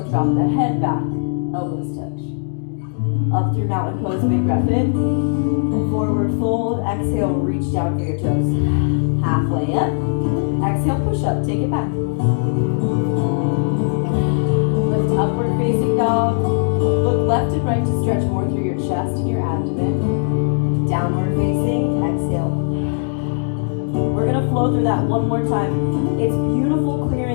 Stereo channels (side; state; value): right; silent; digital silence